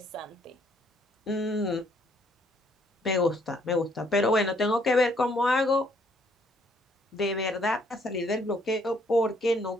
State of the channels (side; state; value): both; normal; correlation 0.67